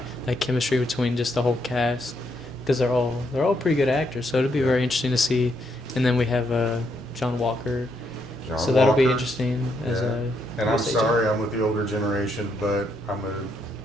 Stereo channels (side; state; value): both; normal; correlation 0.76